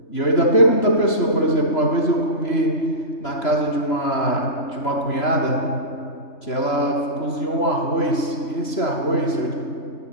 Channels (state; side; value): late; right; 3.0 ms